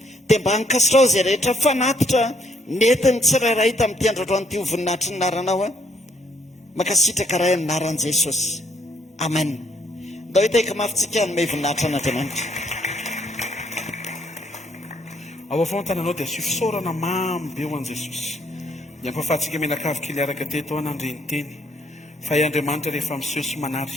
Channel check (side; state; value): both; normal; correlation 0.69